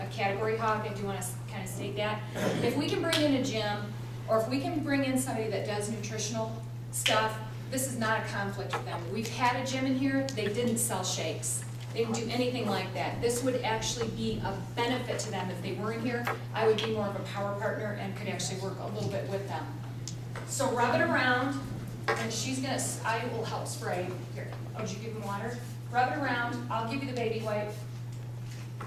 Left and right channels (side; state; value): both; identical; correlation 1.00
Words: category hog. I do want to kind of state that. If we can bring in a gym, or if we can bring in somebody that does nutritional stuff, this is not a conflict with them. We've had a gym in here, they didn't sell shakes. They didn't do anything like that. This would actually be a benefit to them if they were in here. I would be more of a power partner and could actually work a little bit with them. So rub it around, and I will help spray. Here, did you give them water? Rub it around, I'll give you the baby wipe.